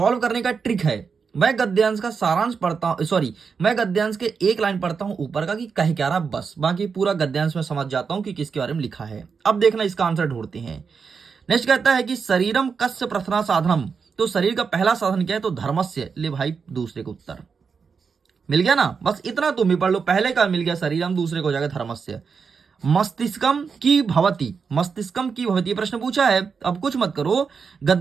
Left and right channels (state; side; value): quieter; left; 5.7 dB